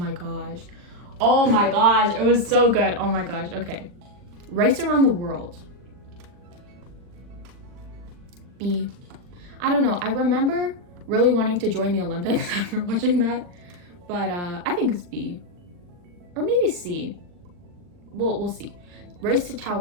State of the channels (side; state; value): left; late; 40 ms